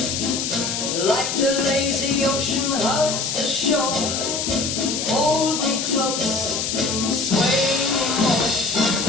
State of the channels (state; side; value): noise; left; hiss, 2 dB below the sound